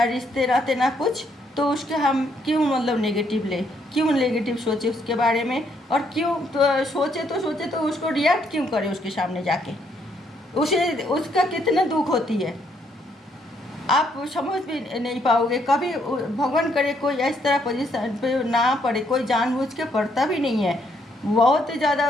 रिश्ते नाते ना कुछ, तो उसके हम क्यों मतलब नेगेटिव ले, क्यों नेगेटिव सोचे उसके बारे में, और क्यों तो सोचे तो उसको रिएक्ट क्यों करे उसके सामने जाके, उसे उसका कितना दुख होती है आप समझ भी नहीं पाओगे कभी। भगवान करे कोई इस तरह पोजीशन पे ना पड़े, कोई जानबूझ के पड़ता भी नहीं है, बहुत ही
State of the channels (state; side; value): normal; both; correlation 0.72